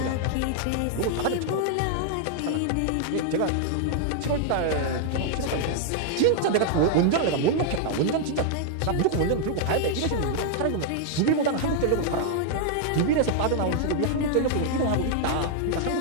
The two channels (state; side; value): different; both; correlation 0.00